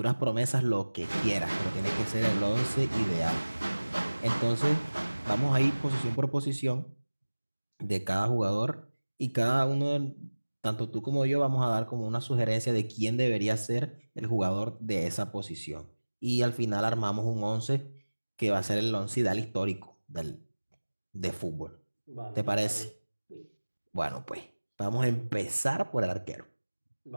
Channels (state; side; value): inverted; both; correlation -1.00